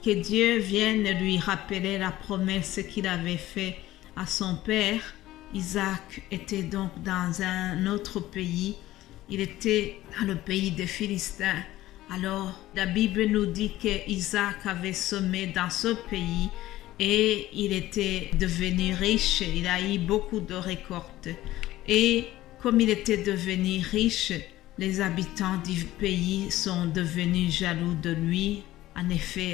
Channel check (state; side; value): quieter; right; 15.7 dB